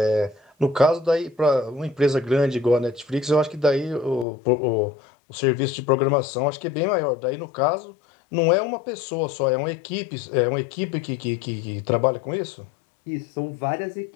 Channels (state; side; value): drops out; right; at 4.2 s